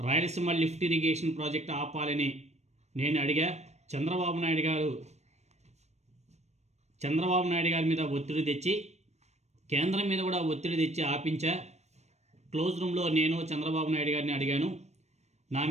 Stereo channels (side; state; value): left; late; 0.32 ms